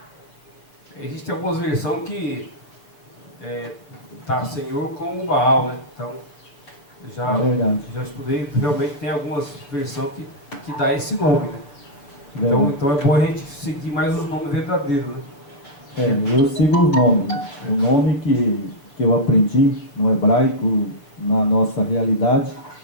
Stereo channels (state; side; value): late; right; 7.1 ms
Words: Existem algumas versões que tá Senhor com o Baal, né? Então, já estudei, realmente tem algumas versões que dá esse nome, né? Então é bom a gente seguir mais os nomes verdadeiros, né? Eu sigo os nomes. O nome que eu aprendi no hebraico, na nossa realidade,